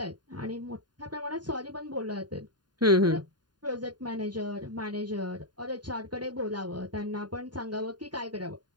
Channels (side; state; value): left; late; 0.70 ms